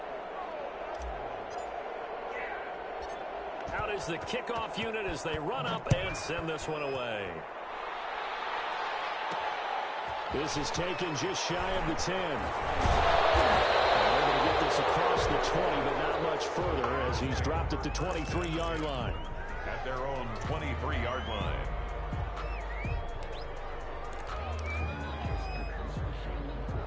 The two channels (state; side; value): identical; both; correlation 1.00